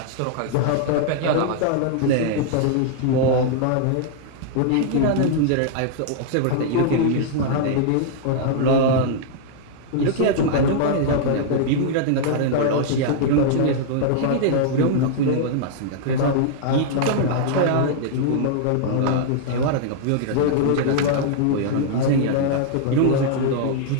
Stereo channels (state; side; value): different; both; correlation -0.01